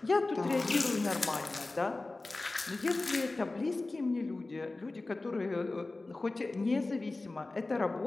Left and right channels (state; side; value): quieter; right; 3.2 dB